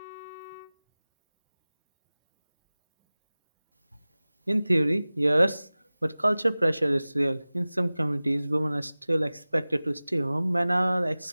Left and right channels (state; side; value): inverted; both; correlation -0.98